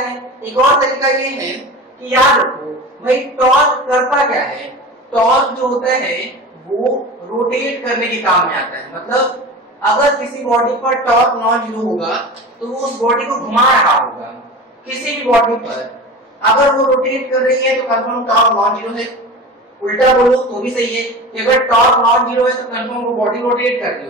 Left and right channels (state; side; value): normal; both; correlation 0.32